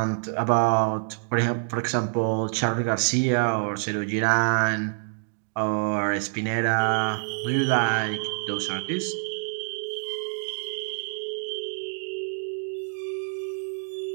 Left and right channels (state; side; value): silent; left; 61 dB below the other